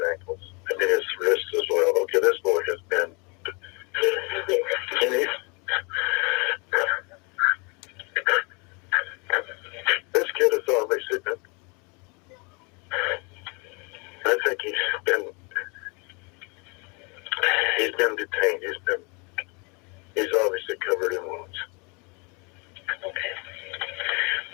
ankles. I mean, his wrists as well. Okay, this boy has been, this kid is on been detained. He's obviously covered in wounds. Okay.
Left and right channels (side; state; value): right; quieter; 31.3 dB